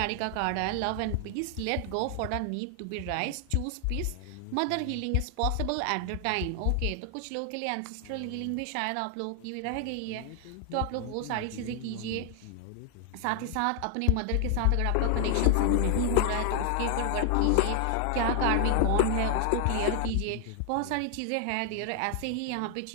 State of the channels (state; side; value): different; both; correlation 0.00